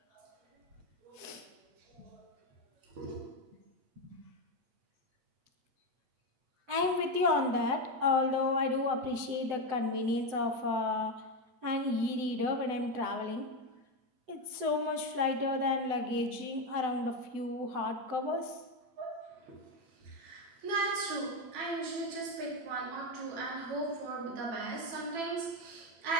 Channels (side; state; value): left; late; 7.9 ms